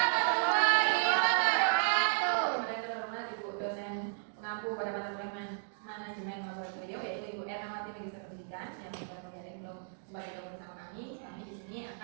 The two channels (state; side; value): silent; left; digital silence